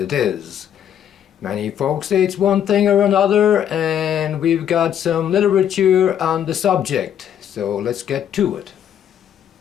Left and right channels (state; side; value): quieter; right; 9.6 dB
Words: is. Many folks say it's one thing or another, and we've got some literature on the subject, so let's get to it.